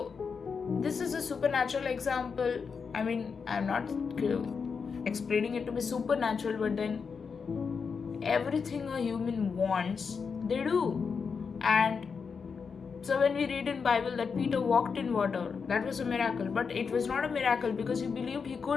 this is a supernatural example. I mean, I'm not explaining it to be supernatural, but then everything a human wants, they do. And so when we read in Bible that Peter walked in water, that was a miracle, but it was not a miracle because he believed he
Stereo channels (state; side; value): quieter; right; 5.7 dB